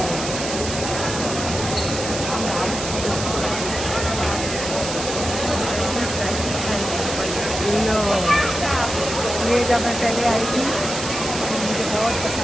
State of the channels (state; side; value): noise; right; hiss, 6 dB below the sound